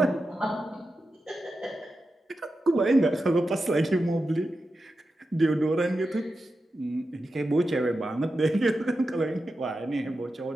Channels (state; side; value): normal; both; correlation 0.90